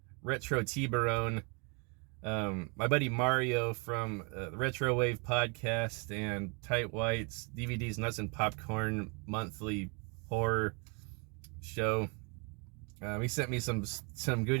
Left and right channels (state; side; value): quieter; left; 33.5 dB